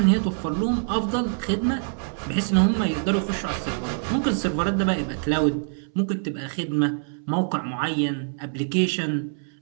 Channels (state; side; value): silent; left; 62 dB below the other